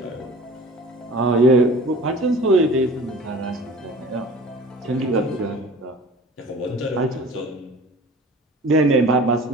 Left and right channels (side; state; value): both; normal; correlation 0.43